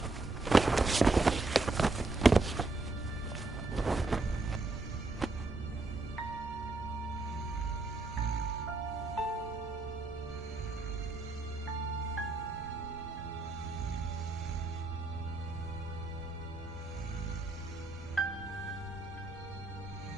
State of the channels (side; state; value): left; quieter; 3.2 dB